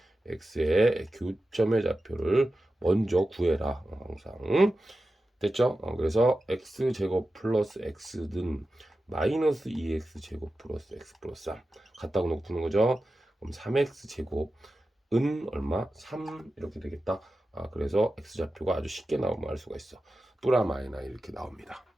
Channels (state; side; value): normal; both; correlation 0.93